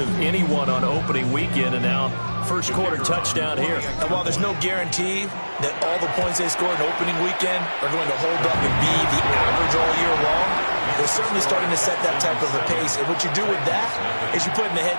anyone on opening weekend, and now first quarter touchdown here. And while there's no guarantee that all the points they scored in opening weekend are going to hold up and be the average all year long, they're certainly starting to set that type of a pace. And what you do with that is you put in the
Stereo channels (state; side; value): inverted; both; correlation -1.00